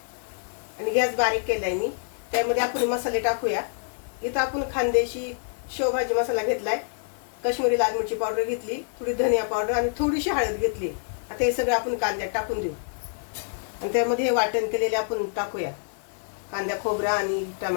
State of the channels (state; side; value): silent; right; digital silence